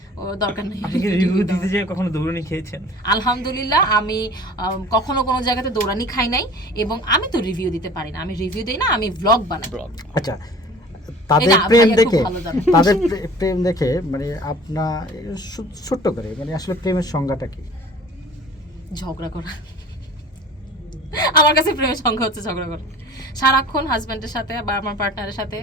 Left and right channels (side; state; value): both; normal; correlation 0.44